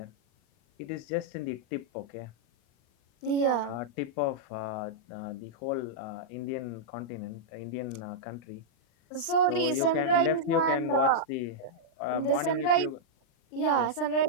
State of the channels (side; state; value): right; late; 39 ms